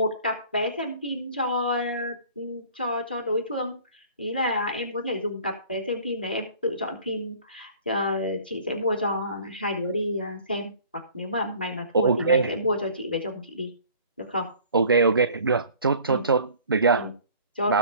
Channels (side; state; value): both; inverted; correlation -0.49